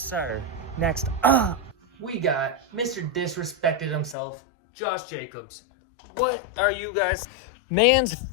sir. Next up, we got Mr. Disrespected himself, Josh Jacobs. What are you guys? Man's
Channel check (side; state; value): right; drops out; at 4.2 s